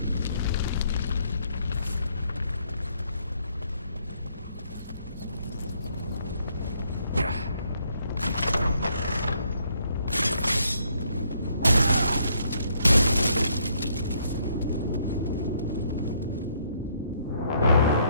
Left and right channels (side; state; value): both; inverted; correlation -0.70